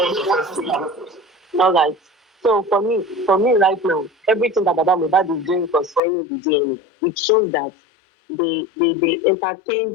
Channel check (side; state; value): right; drops out; at 6.0 s